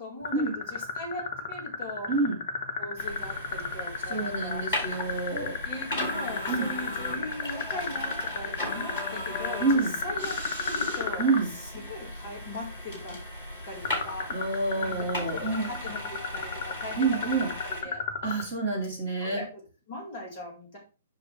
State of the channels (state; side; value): inverted; both; correlation -0.35